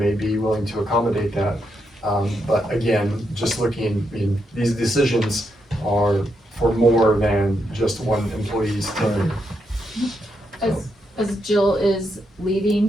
be willing to accommodate that. But again, just looking, I mean, these decisions are for more than just one employee's tenure. As Jill is leaving,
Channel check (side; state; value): both; normal; correlation 0.81